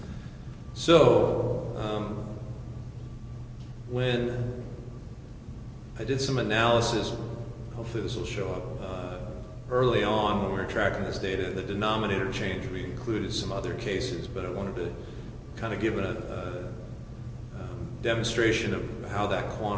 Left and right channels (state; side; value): identical; both; correlation 1.00